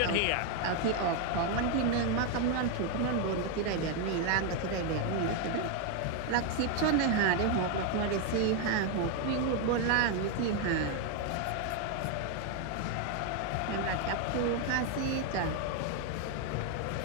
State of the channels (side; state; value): both; different; correlation 0.01